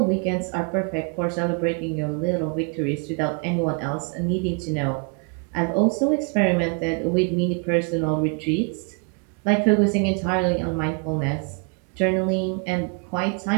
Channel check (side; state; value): left; quieter; 36.7 dB